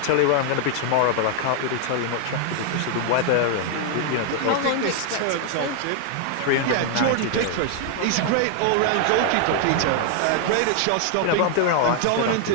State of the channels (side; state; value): both; different; correlation 0.00